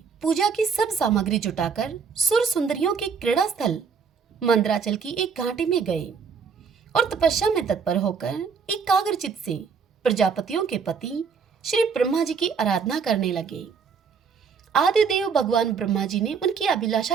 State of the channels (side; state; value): left; quieter; 5.9 dB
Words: पूजा की सब सामग्री जुटाकर सुर सुंदरियों के क्रीड़ा स्थल मंदराचल की एक घाटी में गए और तपस्या में तत्पर होकर एकाग्रचित से प्रजापतियों के पति श्री ब्रह्मा जी की आराधना करने लगे। आदिदेव भगवान ब्रह्मा जी ने उनकी